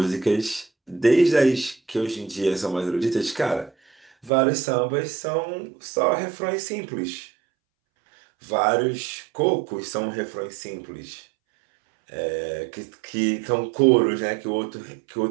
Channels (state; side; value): drops out; left; at 4.3 s